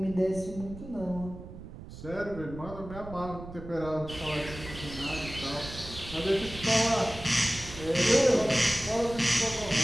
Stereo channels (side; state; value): right; noise; rumble, 13 dB below the sound